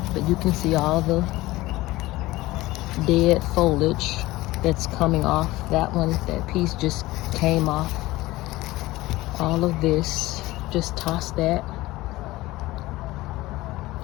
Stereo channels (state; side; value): quieter; right; 18.6 dB